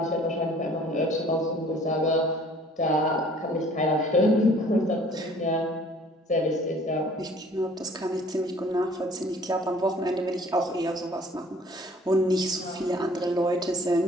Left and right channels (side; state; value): both; normal; correlation 0.54